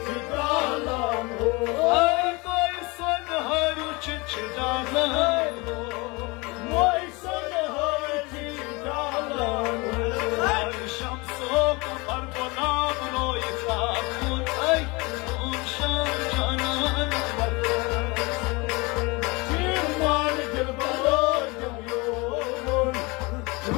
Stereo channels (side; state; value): right; quieter; 25.9 dB